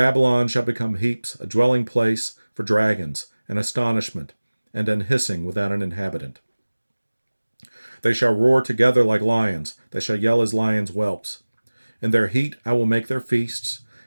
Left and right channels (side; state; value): both; inverted; correlation -1.00